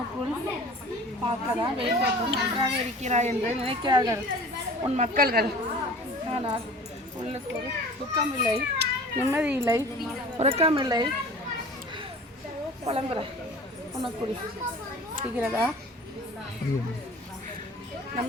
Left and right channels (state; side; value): normal; both; correlation 0.43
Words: பார்க்கதான் வெளித்தோற்றம் நன்றாக இருக்கிறாய் என்று நினைக்கிறார்கள் உன் மக்கள்கள். ஆனால் உள்ளுக்குள் துக்கமில்லை, நிம்மதி இல்லை, உறக்கமில்லை, புலம்புற உனக்குள் இருக்கிறதா?